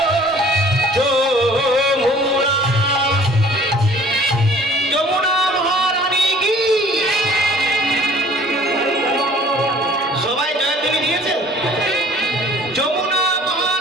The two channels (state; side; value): normal; both; correlation 0.52